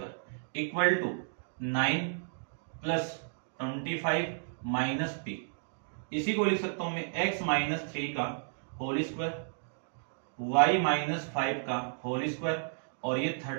equal to 9 plus 25 minus p। इसी को लिख सकता हूं मैं x माइनस 3 का होल स्क्वायर, y माइनस 5 का होल स्क्वायर, और ये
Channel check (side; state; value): left; silent; digital silence